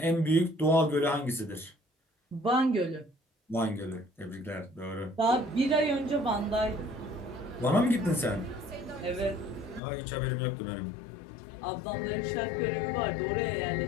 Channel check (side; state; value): right; drops out; at 9.8 s